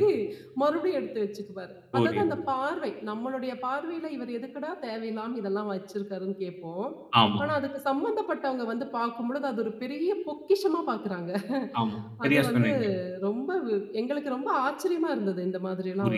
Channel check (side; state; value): both; identical; correlation 1.00